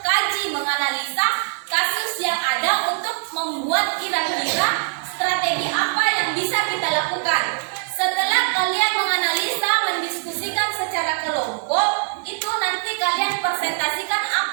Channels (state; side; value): silent; left; 60 dB below the other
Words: menganalisa kasus yang ada untuk membuat kira-kira strategi apa yang bisa kita lakukan. Setelah kalian menganalisa, mendiskusikan secara kelompok, itu nanti kalian presentasikan